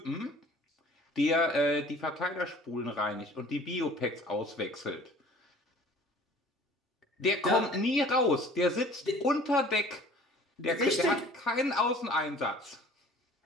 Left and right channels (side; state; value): both; normal; correlation 0.49